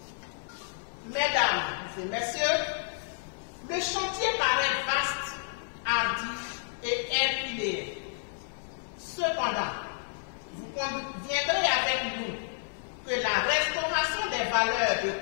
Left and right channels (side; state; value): right; silent; 58 dB below the other